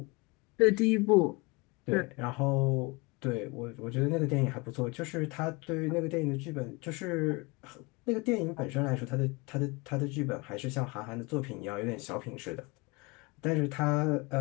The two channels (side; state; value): right; quieter; 26.9 dB